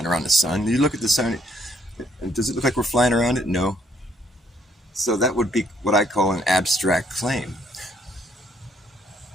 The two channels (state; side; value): normal; both; correlation 0.68